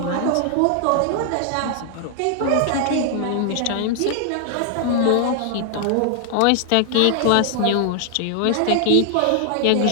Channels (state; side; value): different; both; correlation 0.00